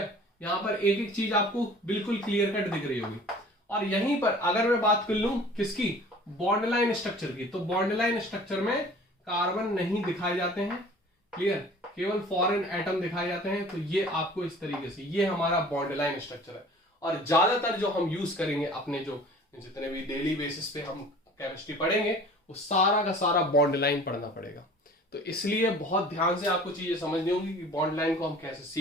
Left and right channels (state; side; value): normal; both; correlation 0.46